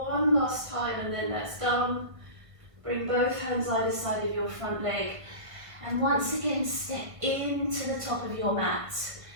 last time, and then that's done. Bring both hands either side of your front leg. And once again, step into the top of your mat.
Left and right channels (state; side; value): late; left; 1.5 ms